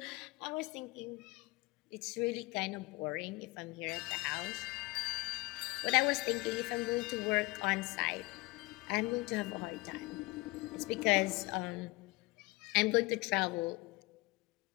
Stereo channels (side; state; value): right; quieter; 23.1 dB